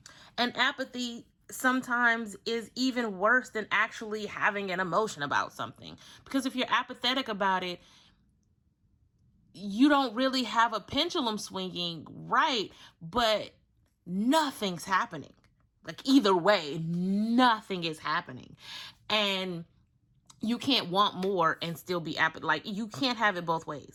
apathy sometimes is even worse than actually having an emotion about something. Because if you're apathetic about it, you don't really have a pendulum swinging, right? But nothing's happening. Like, either way, nothing is happening. And you can't want more and still be apathetic. Like, you can't have it both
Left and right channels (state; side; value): identical; both; correlation 1.00